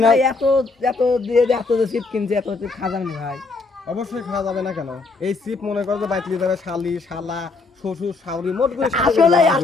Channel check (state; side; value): quieter; right; 3.8 dB